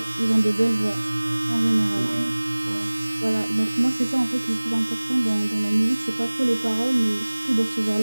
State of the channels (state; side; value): inverted; both; correlation -1.00